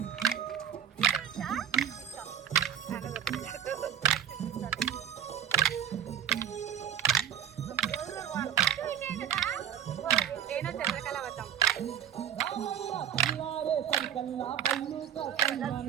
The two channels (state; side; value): quieter; left; 9.4 dB